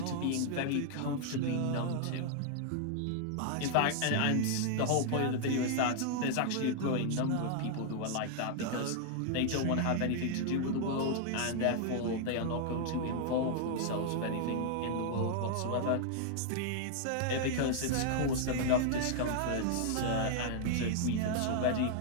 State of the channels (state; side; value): different; both; correlation 0.00